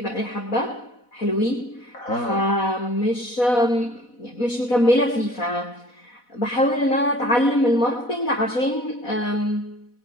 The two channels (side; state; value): right; late; 4.1 ms